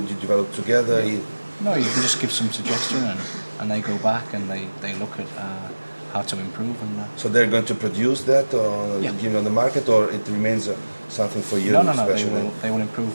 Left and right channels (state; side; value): inverted; both; correlation -1.00